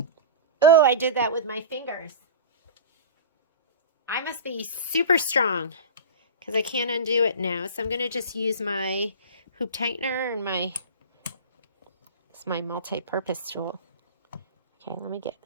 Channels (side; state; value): both; inverted; correlation -0.31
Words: Oh, I did that with my fingers. I must be super strong, because I can't undo it now. So I'm going to just use my hoop tightener and it's my multi-purpose tool. Okay, let me